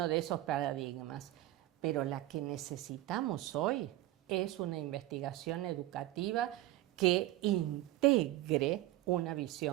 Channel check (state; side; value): quieter; left; 15.7 dB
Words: de esos paradigmas. Pero la que necesitamos hoy es una investigación educativa que integre una